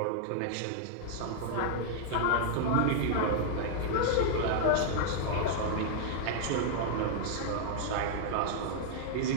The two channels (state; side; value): different; both; correlation -0.01